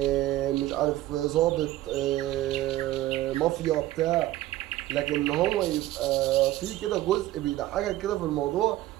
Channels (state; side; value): quieter; left; 15.3 dB